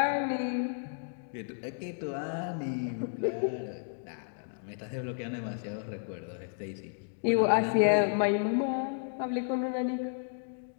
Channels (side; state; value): right; silent; digital silence